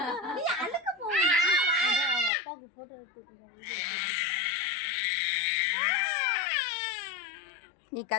நீ அழுக்க போவா. அப்பாவுக்கு போட்டோ எடுத்துட்டு நீ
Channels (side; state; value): right; drops out; at 2.3 s